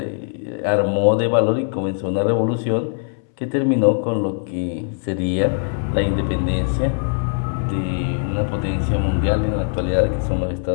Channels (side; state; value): right; silent; 63 dB below the other